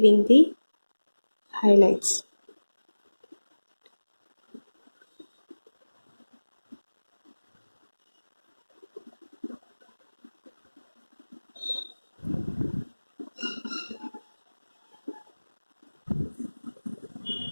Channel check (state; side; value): inverted; both; correlation -1.00